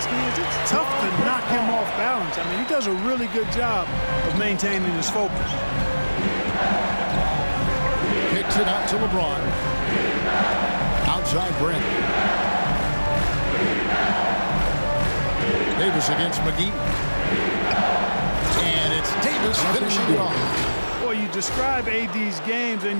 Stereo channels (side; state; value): both; inverted; correlation -1.00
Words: is, it's tough to knock him off balance. I mean, he does a really good job of maintaining his focus. Kicks it out to LeBron. Outside Brent. Davis against McGee. And it's Davis finishing it off. Boy, you describe AD's games